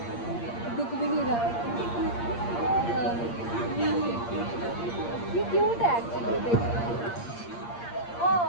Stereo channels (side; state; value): right; late; 8.6 ms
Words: दिख भी नहीं रहा है. ये क्यूट है एक्चुअली. देखो